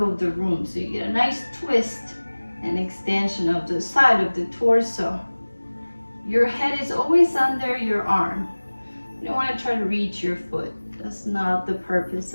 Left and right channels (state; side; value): inverted; both; correlation -1.00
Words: the room. So you get a nice twist and extension of the side of the torso. Your head is always under your arm. You don't want to try to reach your foot. That's not the purpose